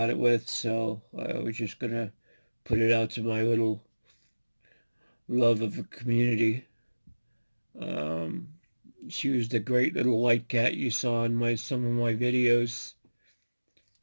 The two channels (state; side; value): inverted; both; correlation -1.00